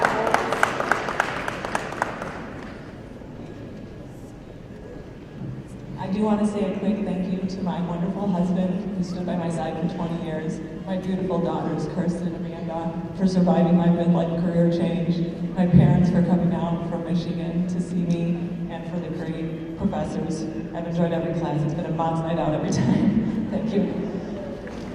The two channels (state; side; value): identical; both; correlation 1.00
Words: I do want to say a quick thank you to my wonderful husband who stood by my side for 20 years, my beautiful daughters, Kirsten and Amanda, for surviving my midlife career change, my parents for coming out from Michigan to see me, and for the great professors. I've enjoyed every class. It's been a mom's night out every time. Thank you.